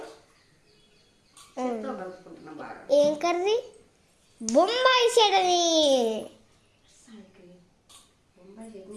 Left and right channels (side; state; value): both; identical; correlation 1.00